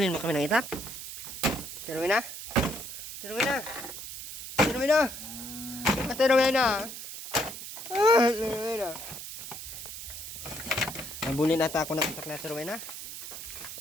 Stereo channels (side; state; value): right; noise; hiss, 9 dB below the sound